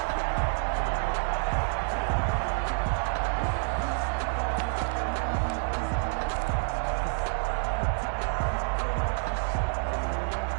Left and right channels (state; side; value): silent; left; 59 dB below the other